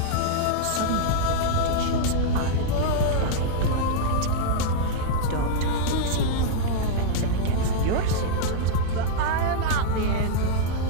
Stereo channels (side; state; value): both; different; correlation -0.01